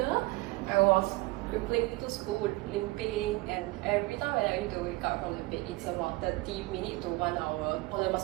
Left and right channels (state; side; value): quieter; left; 21.8 dB